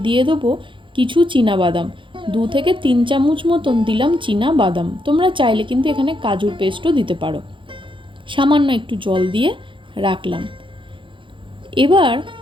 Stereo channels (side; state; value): left; late; 0.24 ms